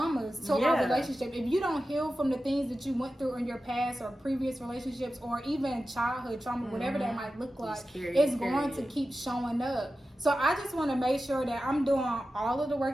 to our relationship. If you don't heal from the things that you went through in your past or previous relationships, or even childhood trauma, whatever that might look like, it's going to keep showing up. So I just want to make sure that I'm doing all of the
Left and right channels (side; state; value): both; normal; correlation 0.93